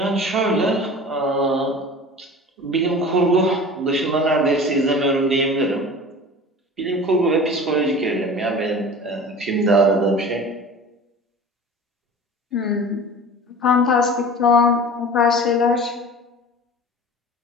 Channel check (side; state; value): both; normal; correlation 0.39